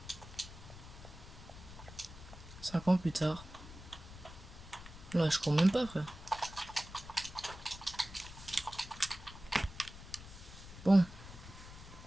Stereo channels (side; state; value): left; noise; rumble, 15 dB below the sound